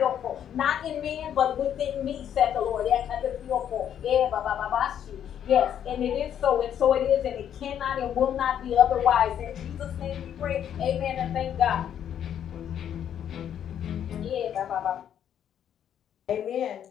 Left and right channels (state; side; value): quieter; right; 9.6 dB